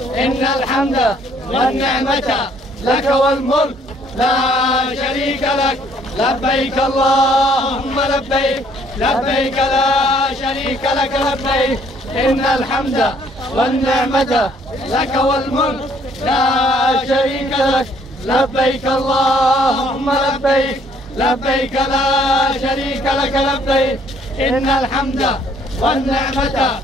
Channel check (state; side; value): normal; both; correlation 0.63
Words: إن الحمد والنعمة لك والملك لا شريك لك لبيك اللهم لبيك لبيك لا شريك لك لبيك إن الحمد والنعمة لك والملك لا شريك لك لبيك اللهم لبيك لبيك لا شريك لك لبيك إن الحمد والنعمة